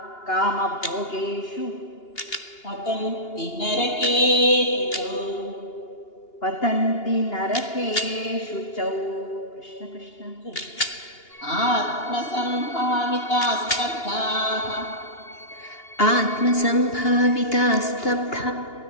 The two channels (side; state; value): right; late; 2.8 ms